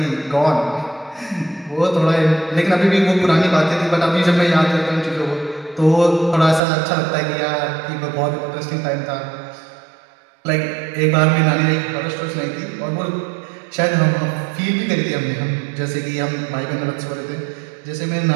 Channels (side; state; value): left; drops out; at 6.6 s